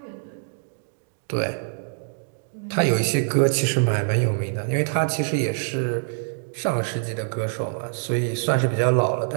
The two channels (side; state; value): left; silent; digital silence